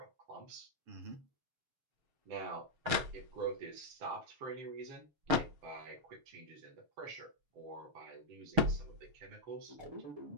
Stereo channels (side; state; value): left; late; 7.1 ms